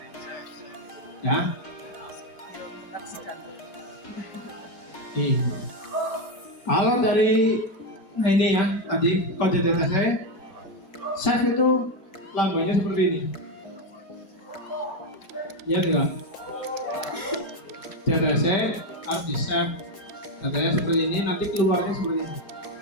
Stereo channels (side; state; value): right; late; 5.2 ms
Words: ya. Kalau dari ini ya tadi kode data saya save itu lambangnya seperti ini ya, enggak data saya harus di save datanya seperti ini, nanti keluarnya seperti ini